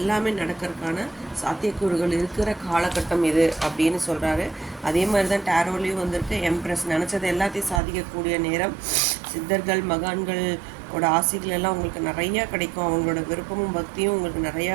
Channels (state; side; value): drops out; left; at 7.8 s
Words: நடக்கிறதுக்கான சாத்தியக்கூறுகள் இருக்கிற காலகட்டம் இது அப்படின்னு சொல்கிறாரு. அதே மாதிரி தான் டேரோலையும் வந்திருக்கு. எம்ப்ரெஸ் நினச்சது எல்லாத்தையும் சாதிக்கக்கூடிய நேரம். சித்தர்கள் மகான்களோட ஆசைகள் எல்லாம் உங்களுக்கு நிறையா கிடைக்கும். அவங்களோட விருப்பமும் பக்தியும் உங்களுக்கு